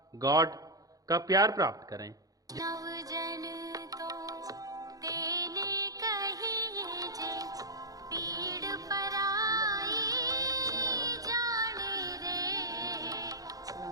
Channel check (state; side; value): late; left; 0.17 ms